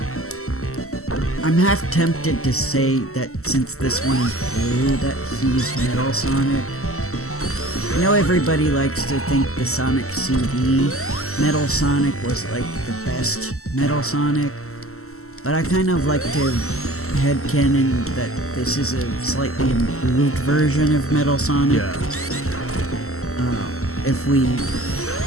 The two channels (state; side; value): late; right; 0.63 ms